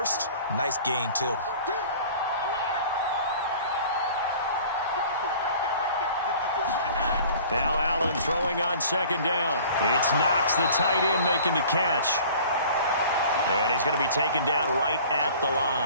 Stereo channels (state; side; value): inverted; both; correlation -0.47